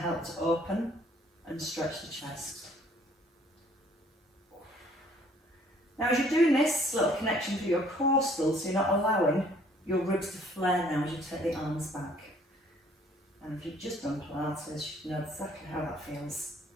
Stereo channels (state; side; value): normal; both; correlation 0.59